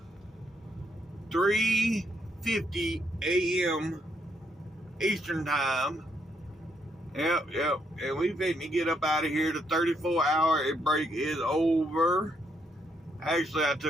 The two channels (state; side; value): normal; both; correlation 0.75